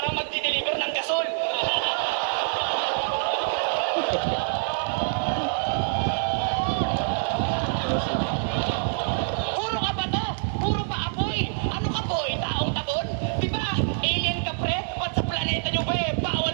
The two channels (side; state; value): left; silent; 61 dB below the other